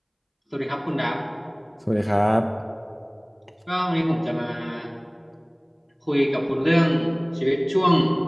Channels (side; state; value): both; identical; correlation 1.00